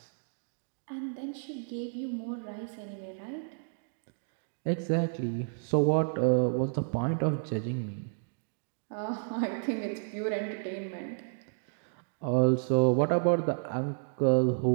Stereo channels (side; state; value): left; silent; digital silence